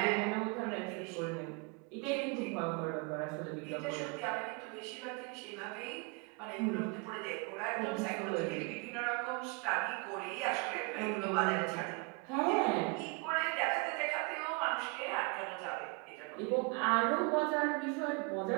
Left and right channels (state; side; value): quieter; left; 30.8 dB